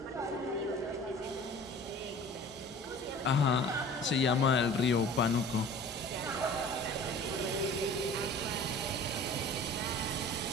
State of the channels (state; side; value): normal; both; correlation 0.43